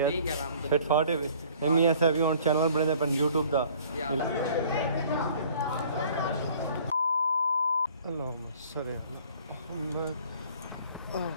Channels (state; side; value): inverted; both; correlation -0.54